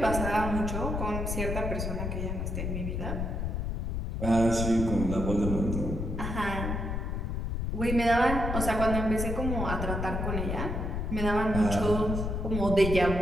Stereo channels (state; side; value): noise; left; rumble, 2 dB below the sound